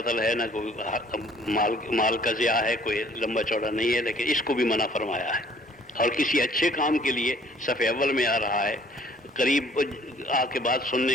ہے، نہ کوئی مال کا ضیاع ہے، کوئی لمبا چوڑا نہیں ہے، لیکن اس کو بھی منع فرمایا ہے۔ اور کسی اچھے کام کے لیے صف اول میں آ رہا ہے، قریب آ کے بات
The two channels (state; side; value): normal; both; correlation 0.58